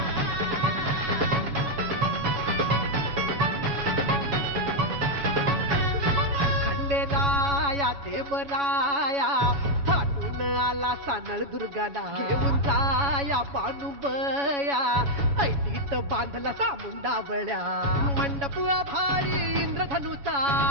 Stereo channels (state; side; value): late; left; 7.1 ms